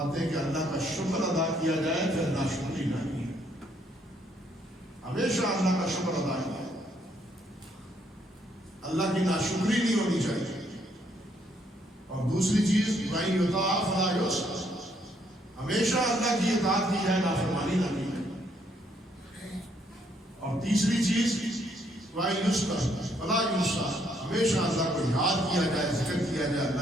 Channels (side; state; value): both; normal; correlation 0.70